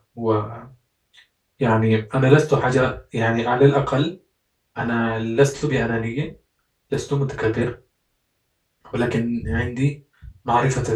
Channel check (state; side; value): identical; both; correlation 1.00